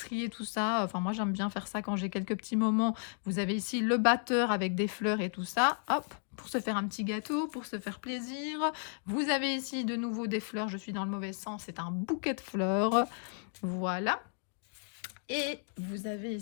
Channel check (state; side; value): silent; right; 55 dB below the other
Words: et tout ça. Enfin moi j'aime bien faire ça quand j'ai quelques petits moments. Vous avez ici le batteur avec des fleurs et tout ça. Hop, pour se faire un petit gâteau, pour se faire plaisir. Vous avez ici de nouveau des fleurs, je suis dans le mauvais sens, c'est un bouquet de fleurs. Voilà. Et vous avez